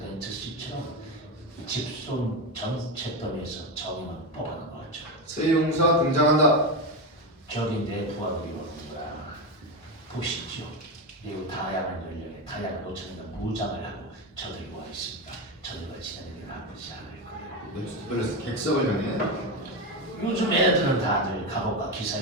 씨처럼 집손 전체더미에서 정의만 뽑아낸 거죠. 새 용사 등장한다. 저기 내 부하들이 오는구나. 보시죠. 매우 다양한 연령의 다양한 옷차림과 무장을 하고 저들이 와 있습니다. 저들과 지내는 게 나쁘지 않을 거예요. 멜로스 객석을 향해 요즘 애들은 다들 갑옷과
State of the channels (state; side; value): normal; both; correlation 0.14